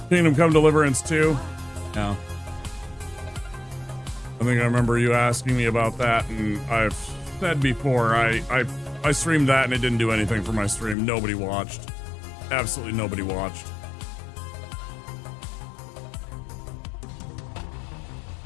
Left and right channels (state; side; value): drops out; right; at 11.0 s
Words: Kingdom Come Deliverance 2? Yeah. I think I remember you asking me about that, and I've said before, I streamed that and it didn't do anything for my stream. Nobody watched. Absolutely nobody watched.